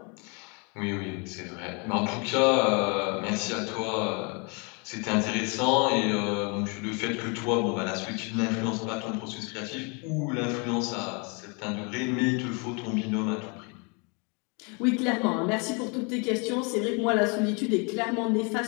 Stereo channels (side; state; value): right; quieter; 33.1 dB